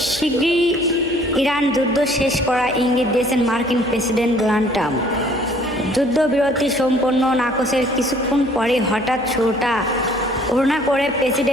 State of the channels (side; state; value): left; noise; hum, 23 dB below the sound